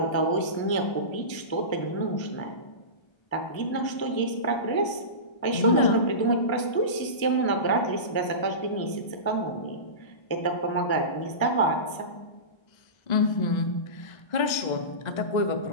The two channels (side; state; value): right; late; 1.3 ms